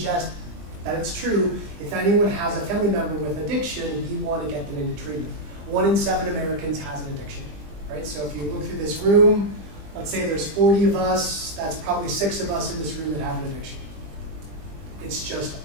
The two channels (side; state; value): left; late; 20 ms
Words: that it's true, if anyone has a family member with addiction, we want to get them into treatment. 1 in 7 Americans has an addiction, right? So if you look through this room, let's say there's 40 of us, that's probably 6 of us in this room that have an addiction. It's just